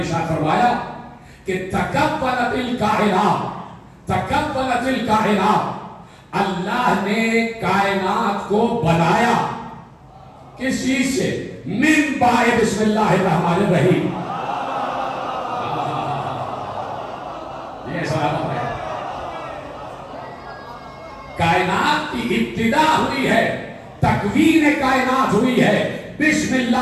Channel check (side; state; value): both; identical; correlation 1.00